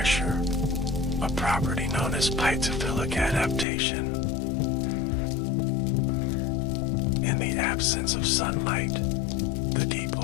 a property known as piezophilic adaptation. In the absence of sunlight, the deep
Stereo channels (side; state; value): right; drops out; at 3.7 s